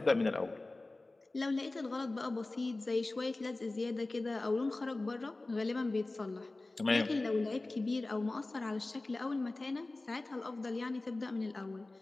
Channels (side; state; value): right; quieter; 3.0 dB